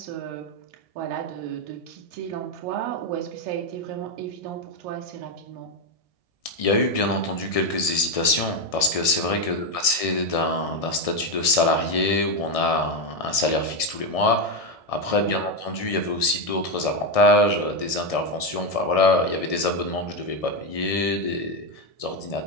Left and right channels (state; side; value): late; right; 1.6 ms